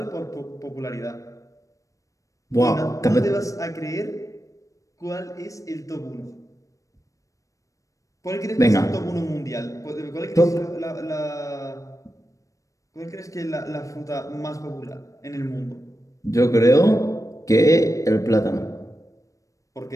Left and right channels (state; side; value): late; right; 0.16 ms